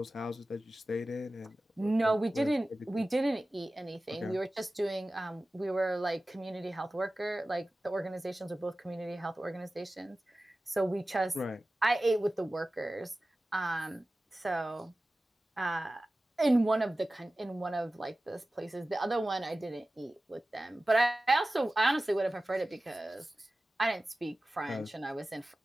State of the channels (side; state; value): both; normal; correlation 0.96